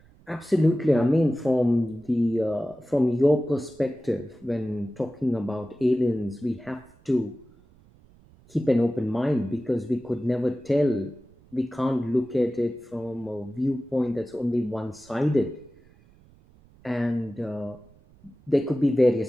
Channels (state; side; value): noise; right; rumble, 28 dB below the sound